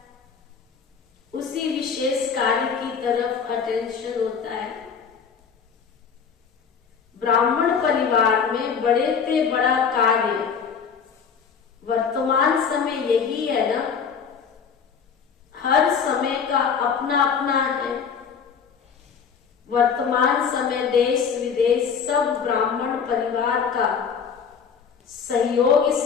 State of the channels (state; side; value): quieter; right; 6.5 dB